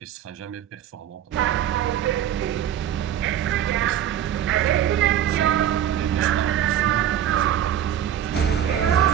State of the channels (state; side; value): quieter; left; 10.5 dB